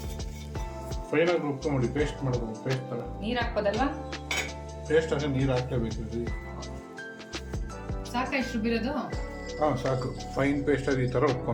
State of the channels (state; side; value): identical; both; correlation 1.00